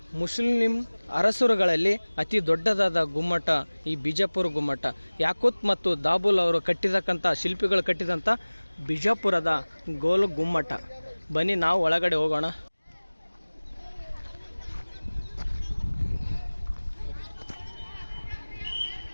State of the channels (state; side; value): inverted; both; correlation -1.00